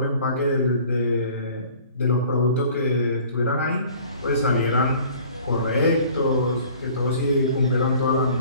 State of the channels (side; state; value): both; inverted; correlation -0.50